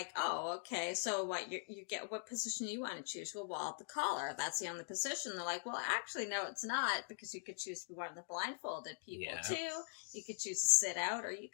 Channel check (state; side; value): silent; right; digital silence